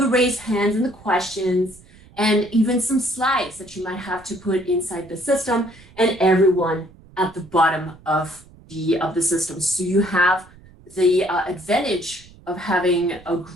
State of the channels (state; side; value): noise; right; rumble, 24 dB below the sound